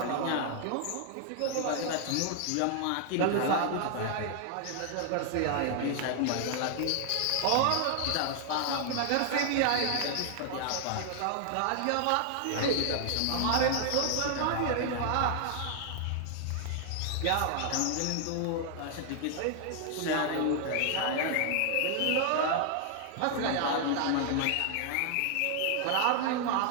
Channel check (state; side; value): different; both; correlation 0.00